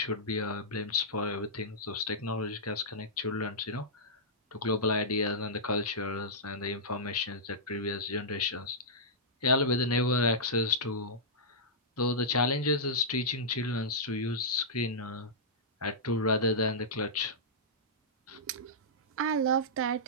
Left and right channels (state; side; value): normal; both; correlation -0.13